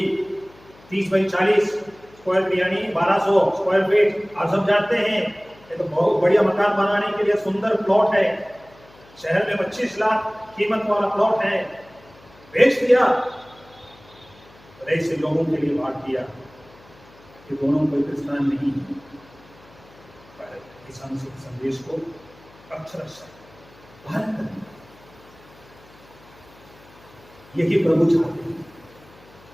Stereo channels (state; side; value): noise; left; hum, 26 dB below the sound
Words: 30x40 स्क्वायर फीट यानी 1200 स्क्वायर फीट, आप सब जानते हैं ये तो बहुत बढ़िया मकान बनाने के लिए सुंदर प्लॉट है। शहर में 25 लाख कीमत वाला प्लॉट है, बेच दिया और ऐसे लोगों के लिए बात किया कि दोनों कोई क्रिस्तान नहीं है, पर ईसा मसीह के संदेश को अक्षरशः पालन करना, यही प्रभु चाहते हैं।